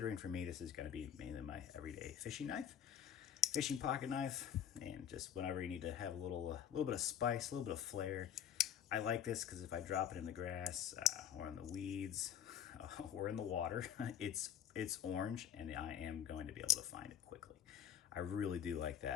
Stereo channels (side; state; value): right; quieter; 9.3 dB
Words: for me, this is going to be mainly my everyday fishing knife, fishing pocket knife, and just whenever you need to have a little bit of spice, a little bit of flair. I like this because if I drop it in the grass or in the weeds or in the water, it's orange and I am going to be able to find it quickly. I really do like